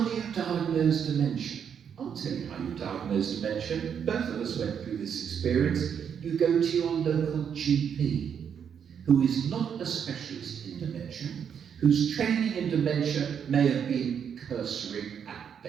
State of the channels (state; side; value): quieter; left; 7.8 dB